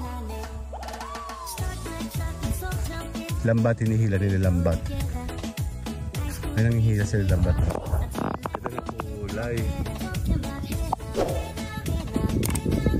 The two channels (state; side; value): identical; both; correlation 1.00